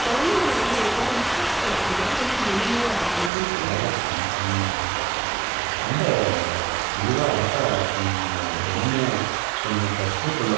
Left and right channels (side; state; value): left; drops out; at 3.3 s